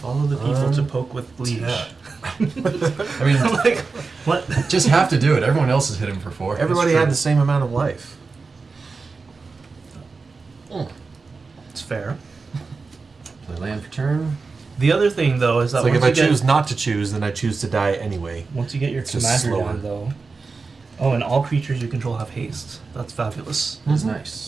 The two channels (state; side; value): quieter; left; 4.3 dB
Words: the people to poke with leash. Yeah. I mean, Like, what? just have to do it. Everyone else is hitting for 4. Everybody true. had the same amount of life. It's fair. Play land for turn. The other thing, though, is that It's like if once I you get, choose not to choose, then I choose to die anyway. once you get your It's just commander slower. down, though. Oh, and all creatures you control have haste. That's fabulous. That's